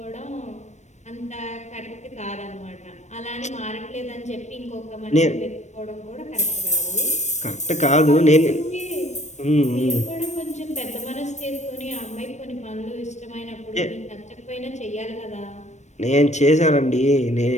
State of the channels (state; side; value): late; right; 0.34 ms